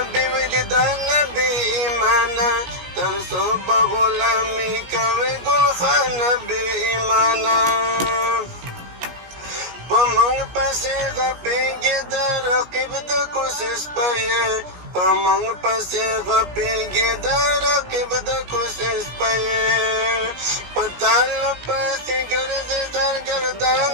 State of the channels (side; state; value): left; late; 17 ms